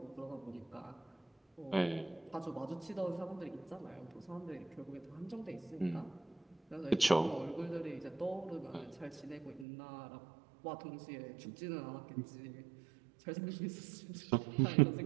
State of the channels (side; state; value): left; drops out; at 9.7 s